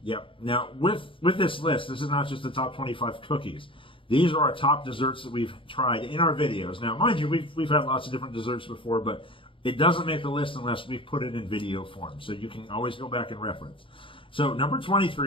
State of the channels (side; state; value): right; late; 0.25 ms